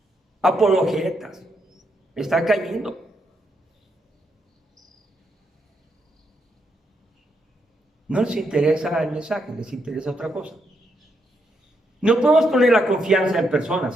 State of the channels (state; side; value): normal; both; correlation 0.79